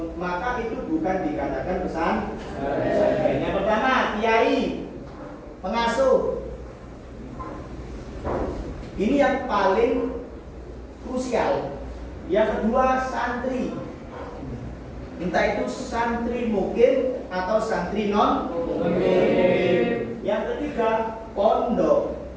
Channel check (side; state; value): both; identical; correlation 1.00